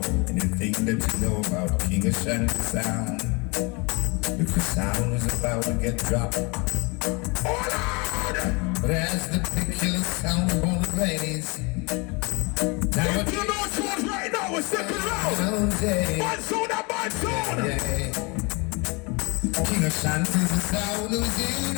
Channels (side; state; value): right; quieter; 29.0 dB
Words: and you think that you know about King Ashanty sound. If the sound is about to get dropped, but as the particular sound on the raise, now if you know what's right now, we're second round. Bad sound and bad sound. King Ashanty's the sound who's here